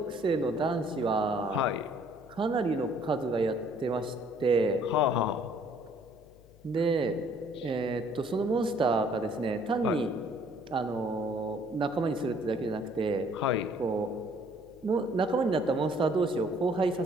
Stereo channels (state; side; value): noise; left; hum, 25 dB below the sound